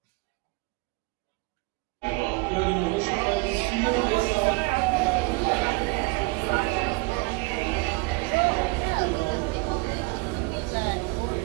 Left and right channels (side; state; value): left; quieter; 26.9 dB